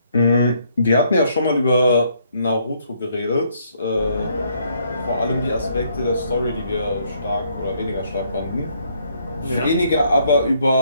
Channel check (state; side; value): inverted; both; correlation -0.70